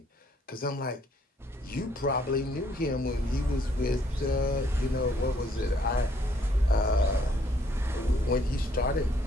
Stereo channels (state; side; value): normal; both; correlation 0.67